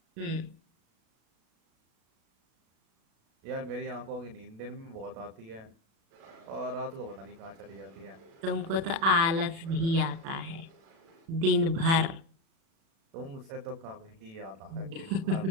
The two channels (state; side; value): late; left; 36 ms